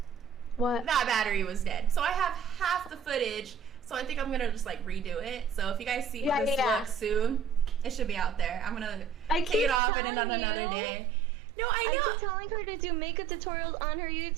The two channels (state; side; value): drops out; left; at 9.8 s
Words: What? That battery was dead. So I have half the footage, so I think I'm gonna just like redo it. So if you guys see this look soon, it should be out there. I'm gonna take it off and another day. No, I know. I keep telling her to do makeup tutorials on her